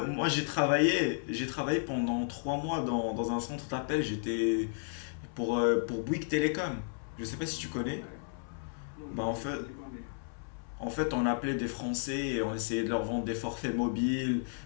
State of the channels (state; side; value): silent; right; 56 dB below the other